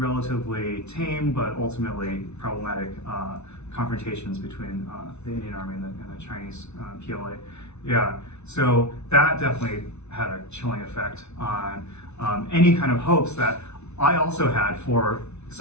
tame but ultimately problematic confrontations between the Indian Army and the Chinese PLA. Yeah, so that definitely had a chilling effect on any kind of hopes that I also had for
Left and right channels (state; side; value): late; right; 0.81 ms